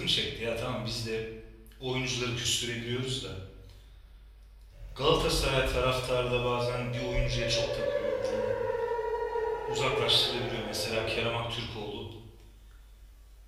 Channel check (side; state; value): both; identical; correlation 1.00